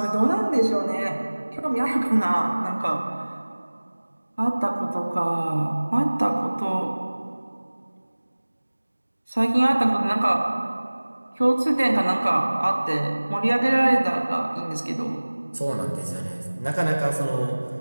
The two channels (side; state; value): both; inverted; correlation -1.00